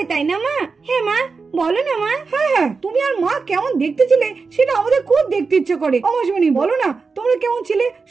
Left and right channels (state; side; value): quieter; left; 4.6 dB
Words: তাই না মা? হ্যাঁ মা, বলো না মা। হ্যাঁ হ্যাঁ, তুমি আর মা কেমন দেখতে ছিলে সেটা আমাদের খুব দেখতে ইচ্ছে করে। অমাসিমণি বলো না, তোমরা কেমন ছিলে?